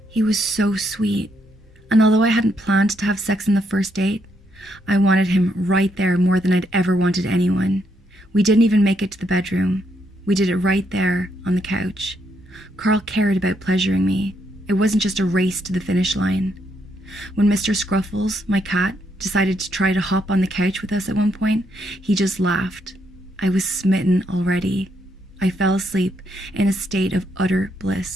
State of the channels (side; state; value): both; normal; correlation 0.76